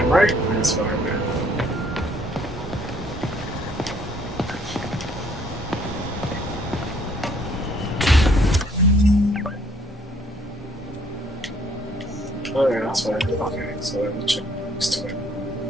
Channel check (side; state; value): both; normal; correlation 0.63